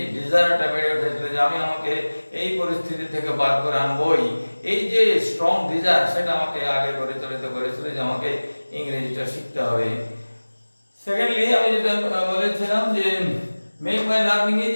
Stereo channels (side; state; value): both; inverted; correlation -1.00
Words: ডিজায়ারটা বেড়ে উঠেছিল যে আমি আমাকে এই পরিস্থিতি থেকে বার করে আনবই। এই যে স্ট্রং ডিজায়ার, সেটা আমাকে আগে পরিচালিত করেছিল যে আমাকে ইংরেজিটা শিখতে হবে। সেকেন্ডলি, আমি যেটা বলেছিলাম যে make my learning